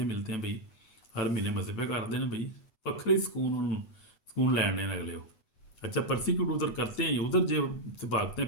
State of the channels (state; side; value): late; right; 8.1 ms